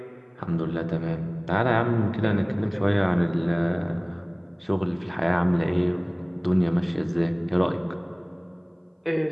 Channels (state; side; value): identical; both; correlation 1.00